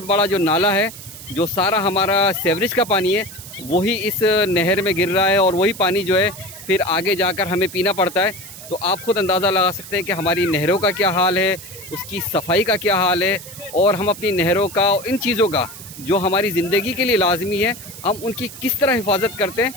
बड़ा जो नाला है, जो सारा हमारा सीवरेज का पानी है वही इस नहर में गिर रहा है और वही पानी जो है फिर आगे जाकर हमें पीना पड़ता है। तो आप ख़ुद अंदाज़ा लगा सकते हैं कि हमारी नहरों का क्या हाल है, उसकी सफाई का क्या हाल है और हम अपनी नहरों का और इन चीज़ों का जो हमारी ज़िंदगी के लिए लाजमी है हम उनकी किस तरह हिफाजत करते हैं,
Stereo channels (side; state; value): right; noise; hiss, 14 dB below the sound